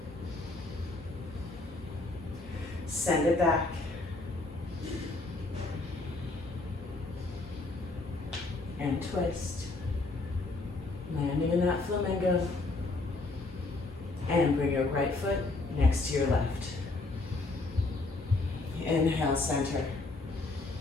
Send it back. And twist. Landing in that flamingo. And bring your right foot next to your left. Inhale, center.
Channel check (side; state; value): right; quieter; 3.2 dB